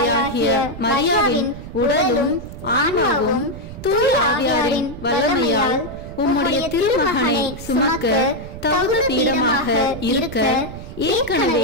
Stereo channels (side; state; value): right; noise; rumble, 12 dB below the sound